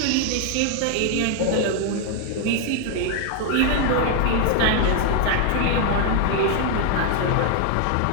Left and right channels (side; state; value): both; different; correlation 0.00